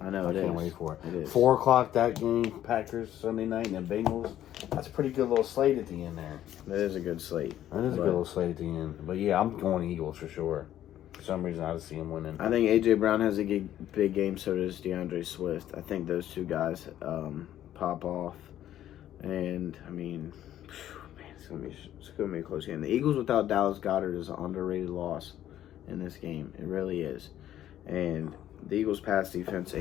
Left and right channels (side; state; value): right; quieter; 12.0 dB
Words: I know I can't wait for it. It is. 4 o'clock that game, Packers Sunday night, and the Bengals. That's a pretty good little slate at the end there. That is a good slate. That is a good little slate at the end. But yeah, I'm going Eagles for sure. For some reason, I just see him winning. I think A.J. Brown has a big game, so does DeAndre Swift. I think those two guys pop off. And, I mean, man, it's gonna be a close game. The Eagles without Dallas Goedert is an underrated loss in this game. It really is. And the Eagles' pass defense